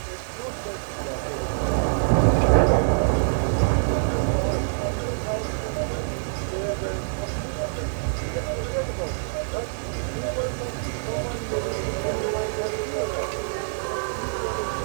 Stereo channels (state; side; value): silent; left; digital silence